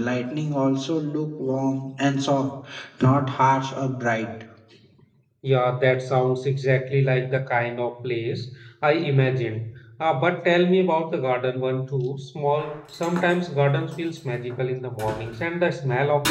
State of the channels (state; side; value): identical; both; correlation 1.00